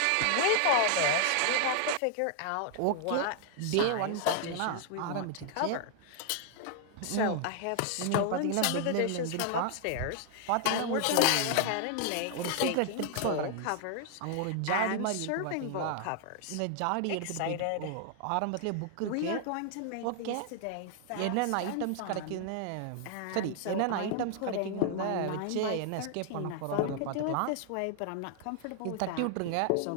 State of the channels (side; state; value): both; different; correlation 0.00